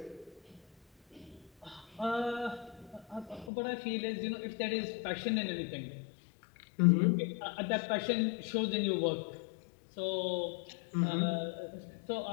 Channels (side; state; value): right; drops out; at 3.5 s